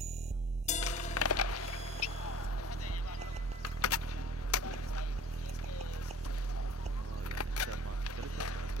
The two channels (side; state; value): both; normal; correlation 0.48